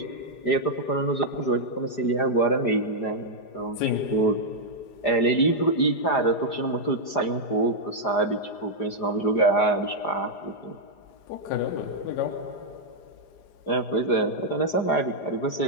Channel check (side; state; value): right; late; 4.9 ms